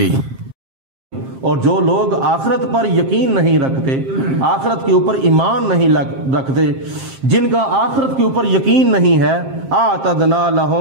اور جو لوگ آخرت پر یقین نہیں رکھتے، آخرت کے اوپر ایمان نہیں رکھتے، جن کا آخرت کے اوپر یقین نہیں ہے، اعتدنا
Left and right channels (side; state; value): left; late; 7.5 ms